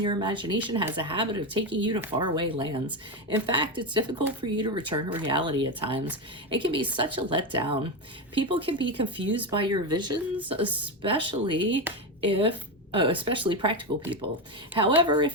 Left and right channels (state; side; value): normal; both; correlation 0.14